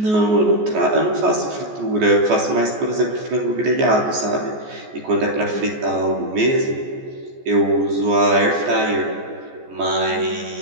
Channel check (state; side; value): late; left; 14 ms